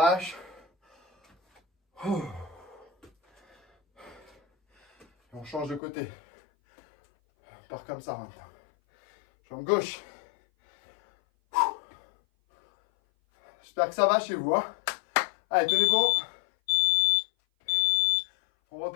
Et on change de côté. On part comme ça maintenant. Jambe gauche. J'espère que ça va chez vous. Allez, tenez bon. On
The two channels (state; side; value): drops out; right; at 5.8 s